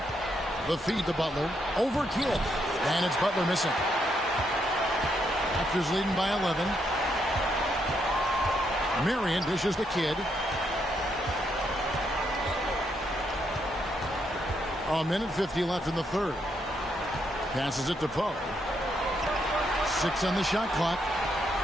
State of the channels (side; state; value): both; normal; correlation 0.77